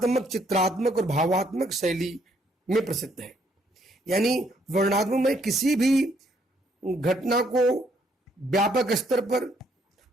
चित्रात्मक और भावात्मक शैली में प्रसिद्ध है। यानी वर्णनात्मक में किसी भी घटना को व्यापक स्तर पर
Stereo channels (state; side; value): normal; both; correlation 0.69